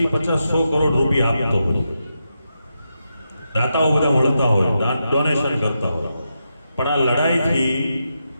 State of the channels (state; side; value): inverted; both; correlation -0.86